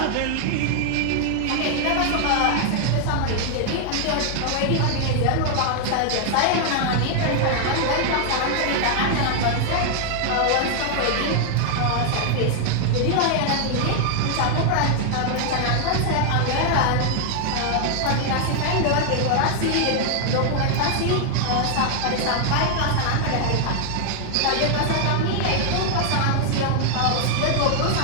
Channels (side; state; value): both; different; correlation 0.00